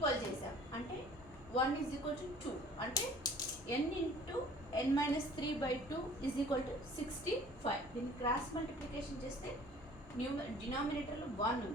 చేసాం. అంటే 1 ఈజ్ ఈక్వల్ టు 2 అంటే n into n minus 3/2 is equal to 65. దీన్ని క్రాస్ మల్టిప్లికేషన్ చేస్తే డినామినేటర్లో 1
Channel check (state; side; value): normal; both; correlation 0.51